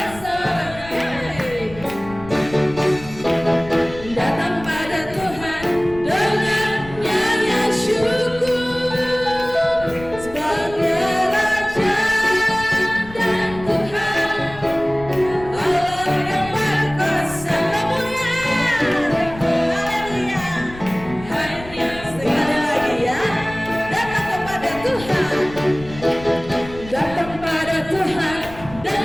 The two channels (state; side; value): noise; left; rumble, 16 dB below the sound